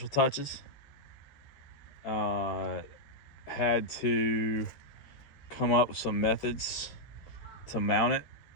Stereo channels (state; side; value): late; right; 13 ms